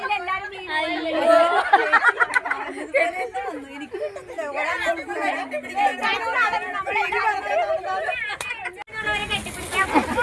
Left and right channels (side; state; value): both; identical; correlation 1.00